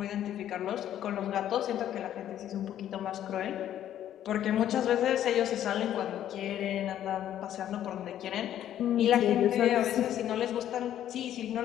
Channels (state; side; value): quieter; right; 11.2 dB